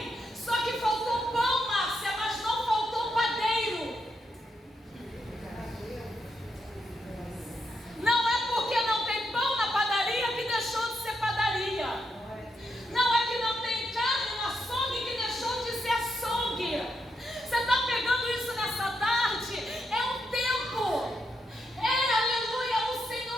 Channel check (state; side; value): normal; both; correlation 0.81